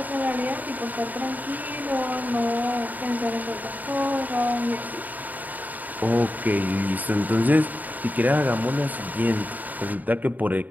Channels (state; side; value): late; left; 0.082 ms